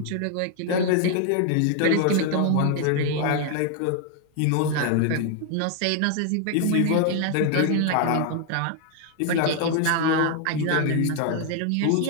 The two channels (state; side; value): different; both; correlation 0.00